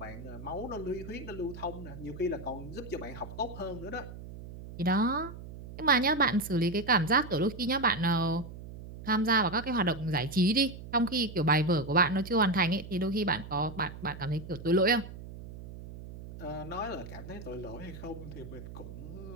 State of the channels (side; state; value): right; noise; hum, 13 dB below the sound